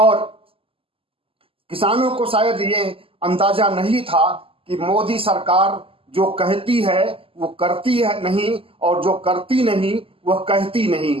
किसानों को शायद ये अंदाजा नहीं था कि मोदी सरकार जो कहती है वो करती है नहीं, और जो करती नहीं वह कहती नहीं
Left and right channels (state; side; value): late; left; 0.26 ms